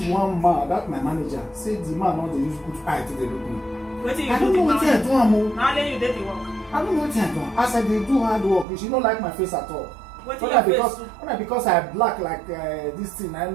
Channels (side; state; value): left; drops out; at 8.7 s